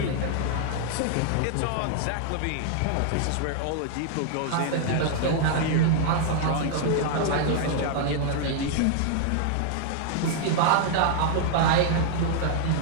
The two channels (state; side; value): different; both; correlation -0.01